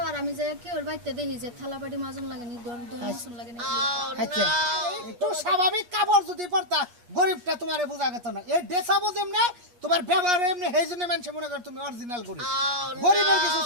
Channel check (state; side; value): late; left; 8.3 ms